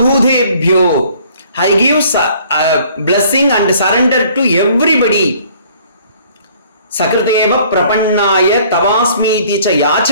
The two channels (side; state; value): both; inverted; correlation -0.56